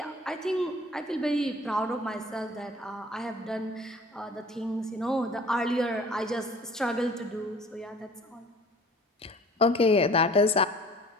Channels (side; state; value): both; normal; correlation 0.49